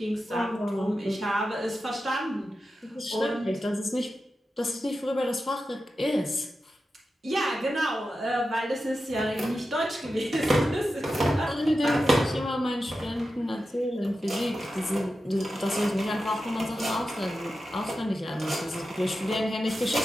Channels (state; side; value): normal; both; correlation 0.91